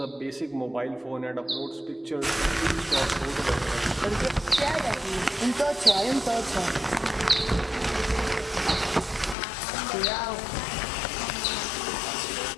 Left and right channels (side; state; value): right; drops out; at 9.3 s